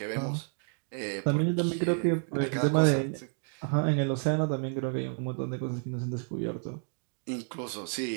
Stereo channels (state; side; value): silent; left; 57 dB below the other